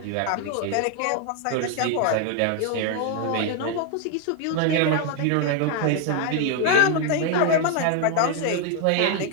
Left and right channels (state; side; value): different; both; correlation 0.01